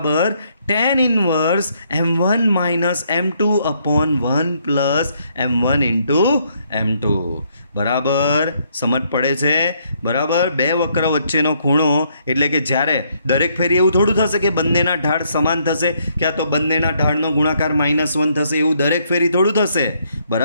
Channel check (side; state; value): both; inverted; correlation -0.71